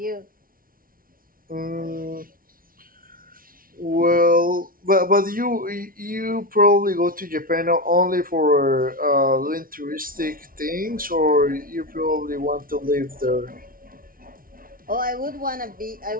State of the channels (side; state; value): left; late; 0.42 ms